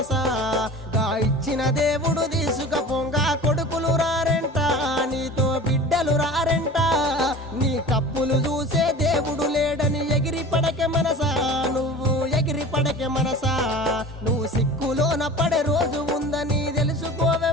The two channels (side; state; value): both; normal; correlation 0.39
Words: గా ఇచ్చిన దేవుడు తీసుకపోంగా కొడుకులు రారెంట, నీతో బిడ్డలు రారెంట. నీ కప్పులు చూసే దేవుడు లేడని ఎగిరి పడకే మనసా, నువ్వు ఎగిరి పడకే మనసా. నువ్వు సిక్కులోన పడే రోజు ఉందని తెలుసుకోవే